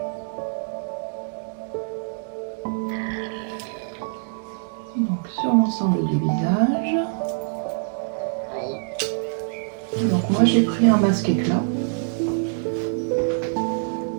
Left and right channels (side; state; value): left; silent; digital silence